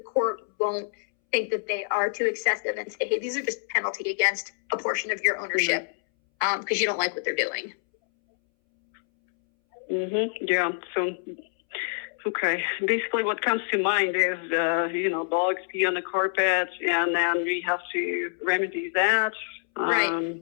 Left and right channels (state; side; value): silent; right; 61 dB below the other